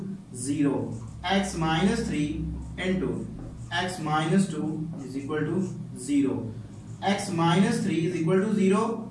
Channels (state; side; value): identical; both; correlation 1.00